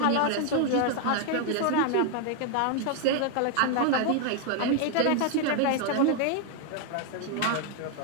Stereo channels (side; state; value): both; different; correlation 0.00